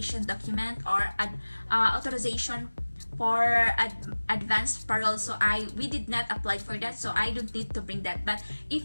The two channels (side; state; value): both; inverted; correlation -1.00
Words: document or authorization for advanced parole, so we did not apply for that, so I don't need to bring that. But